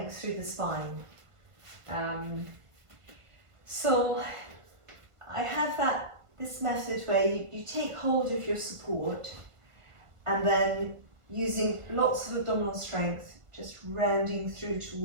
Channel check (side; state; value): left; late; 1.5 ms